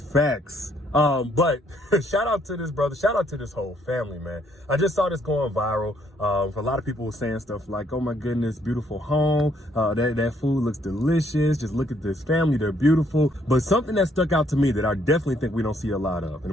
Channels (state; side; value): normal; both; correlation 0.69